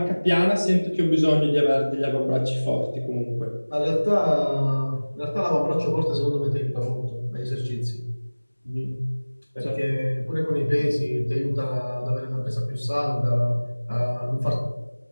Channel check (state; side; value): inverted; both; correlation -1.00